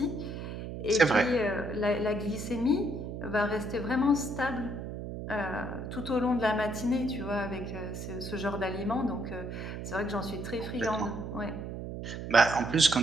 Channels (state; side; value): noise; right; hum, 7 dB below the sound